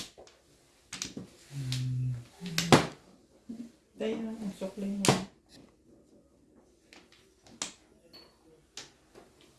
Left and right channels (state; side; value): identical; both; correlation 1.00